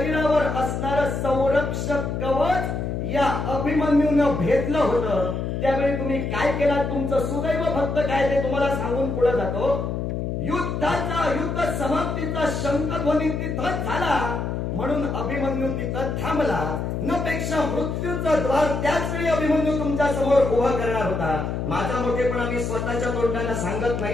असणारं संरक्षक कवच या अभिमन्यूनं भेदलं होतं. त्यावेळी तुम्ही काय केलं? तुमचं सुदैव फक्त काय ते तुम्हाला सांगून पुढे जातो. युद्ध समाप्तीचा शंखध्वनी तिथंच झाला म्हणून अभिमन्यू तिथं थांबला. न पेक्षा मृत्यूचं द्वार त्याच वेळी अभिमन्यू तुमच्या समोर उभं करणार होता. माझा मोठेपणा मी स्वतःच्या तोंडानं सांगत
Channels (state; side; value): noise; left; hum, 2 dB below the sound